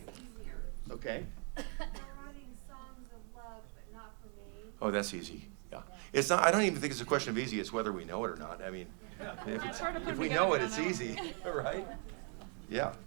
Okay. Oh, that's easy. Yeah, it's not. I don't even think it's a question of easy. It's whether we know it or not. I mean, if we know it, it's easy, right? Yeah.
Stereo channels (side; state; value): left; quieter; 39.9 dB